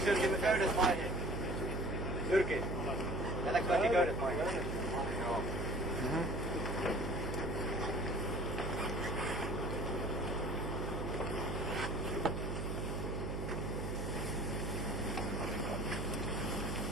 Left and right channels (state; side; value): noise; right; hum, 2 dB below the sound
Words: Jyrki köydet maihin? Jyrki, jätäks kaikki köydet maihin? Joo.